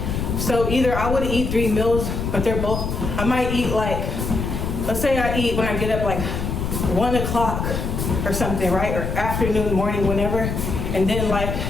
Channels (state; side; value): noise; left; rumble, 3 dB below the sound